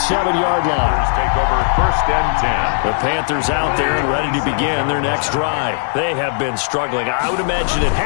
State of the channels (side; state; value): right; silent; digital silence